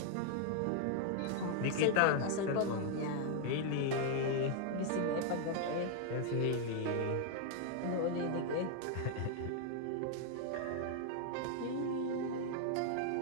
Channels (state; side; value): different; both; correlation 0.00